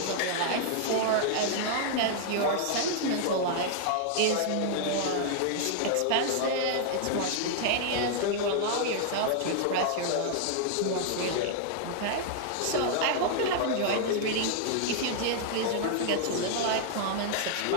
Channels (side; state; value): both; different; correlation -0.01